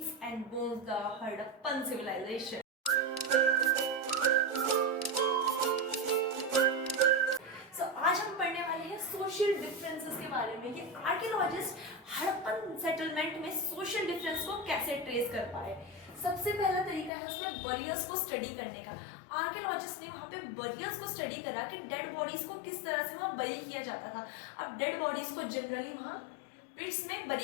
and bones, the Harappan civilization. So आज हम पढ़ने वाले हैं social differences के बारे में कि आर्कियोलॉजिस्ट हड़प्पन सेटलमेंट में सोशल डिफरेंस को कैसे ट्रेस कर पाए। सबसे पहला तरीका है उसमें बरियर्स को स्टडी करने का। आर्कियोलॉजिस्ट ने वहाँ पे बरियर्स को स्टडी करा कि डेड बॉडीज को किस तरह से वहाँ बरी किया जाता था। अब डेड बॉडीज को जनरली वहाँ पिट्स में बरी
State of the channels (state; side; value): drops out; right; at 17.1 s